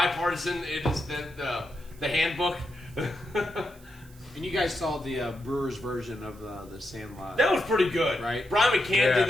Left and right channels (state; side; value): noise; right; hiss, 25 dB below the sound